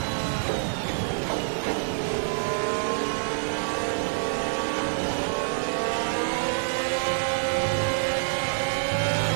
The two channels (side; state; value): left; silent; digital silence